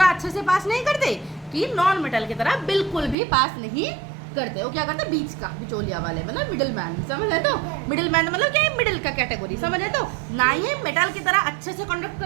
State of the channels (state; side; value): drops out; left; at 3.2 s